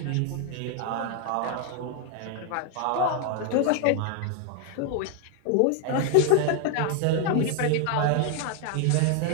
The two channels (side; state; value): both; different; correlation 0.00